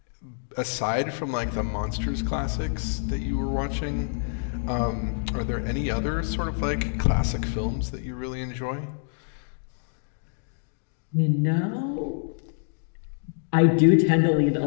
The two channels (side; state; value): right; silent; digital silence